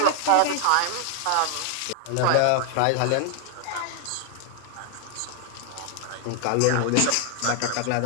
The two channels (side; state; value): both; different; correlation 0.00